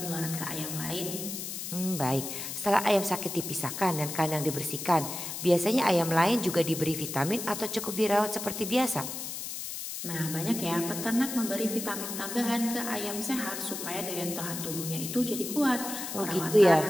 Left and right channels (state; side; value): noise; left; hiss, 6 dB below the sound